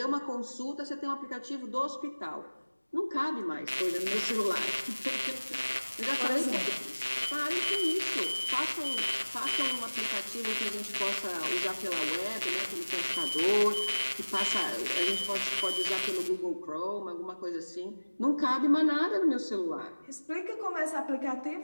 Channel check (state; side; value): inverted; both; correlation -1.00